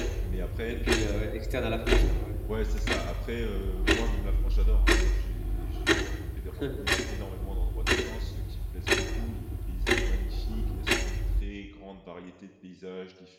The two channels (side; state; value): both; identical; correlation 1.00